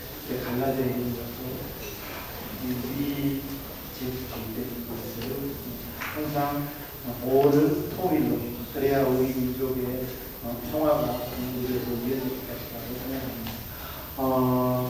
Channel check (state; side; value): identical; both; correlation 1.00